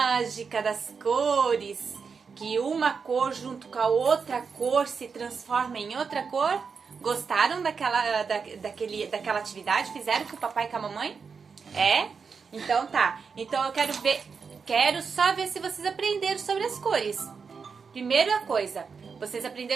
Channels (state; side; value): quieter; left; 5.6 dB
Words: das cores, que uma cor junto com a outra cor se transforma em outra cor. Gostaram daquela atividade? Fizeram com o papai e com a mamãe? É? Então tá. Então eu quero só ver se vocês aprenderam sobre as cores. Primeira coisa, vocês